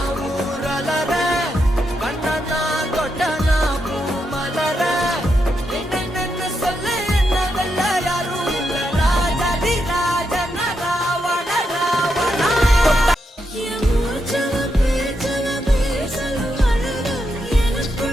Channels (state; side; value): normal; both; correlation 0.83